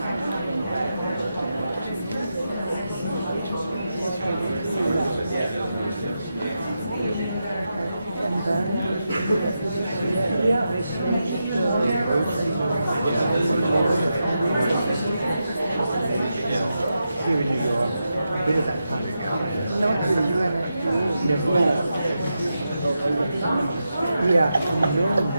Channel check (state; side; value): inverted; both; correlation -0.87